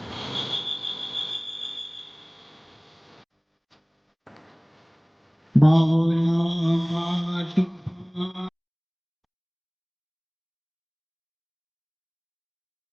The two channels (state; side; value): identical; both; correlation 1.00